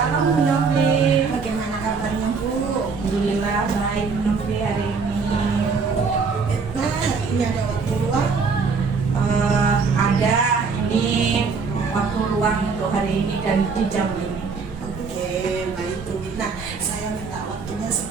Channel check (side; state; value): left; quieter; 5.0 dB